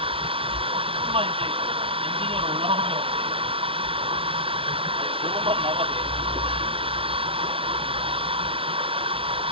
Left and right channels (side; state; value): left; late; 0.26 ms